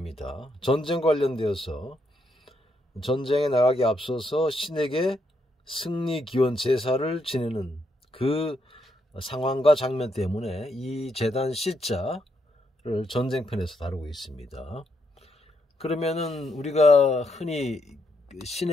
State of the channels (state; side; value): normal; both; correlation 0.78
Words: 전쟁 관련되어서 전쟁에 나가기 앞서서 신에게 승리 기원 제사를 지내는 그 상황과 장면 때문에 이 제단 시자를 전쟁편에서 다루고 있습니다. 그러면은 우리가 흔히